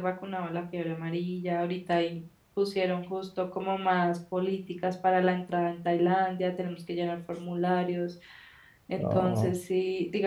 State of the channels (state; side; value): identical; both; correlation 1.00